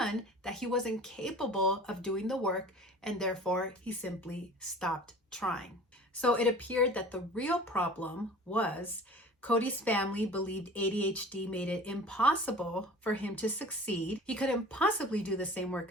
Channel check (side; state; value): both; normal; correlation 0.43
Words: that he wasn't capable of doing the work, and therefore he simply stopped trying. So it appeared that the real problem was Cody's family believed ADHD made it impossible for him to succeed. He couldn't possibly do the same